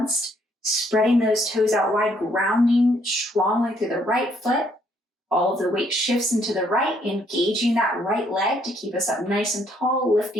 Spreading those toes out wide, grounding strongly through the right foot. All of the weight shifts into the right, engaging that right leg to keep us up nice and tall,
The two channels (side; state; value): both; normal; correlation 0.68